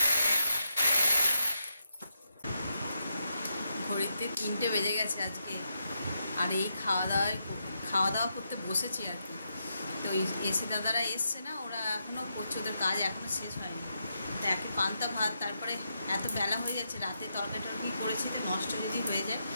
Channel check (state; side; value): inverted; both; correlation -0.82